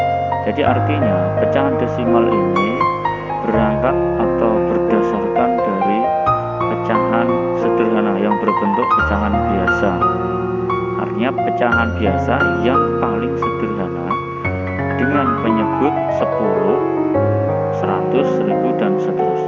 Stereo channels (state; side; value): identical; both; correlation 1.00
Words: Jadi artinya pecahan desimal ini berangkat atau berdasarkan dari pecahan sederhana yang berbentuk pecahan biasa. Artinya pecahan biasa yang paling sederhana dengan penyebut 10, 100, 1000 dan